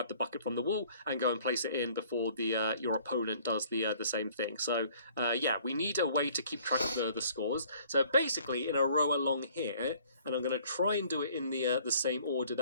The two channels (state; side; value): inverted; both; correlation -0.56